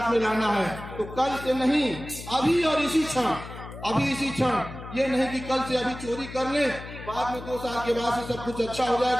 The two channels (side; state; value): left; noise; hum, 12 dB below the sound